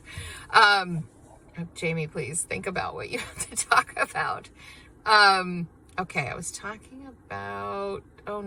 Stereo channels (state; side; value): identical; both; correlation 1.00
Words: Jamie, please think about what you have to talk about. Okay, I was talking about, oh